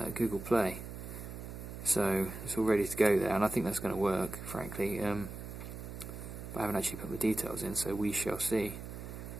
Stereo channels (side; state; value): right; noise; hum, 9 dB below the sound